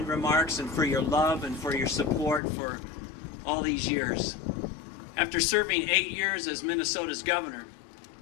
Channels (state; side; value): drops out; right; at 2.4 s